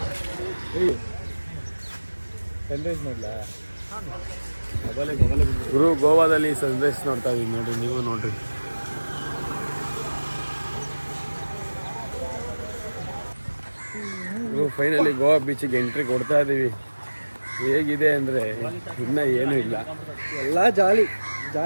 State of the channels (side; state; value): both; inverted; correlation -1.00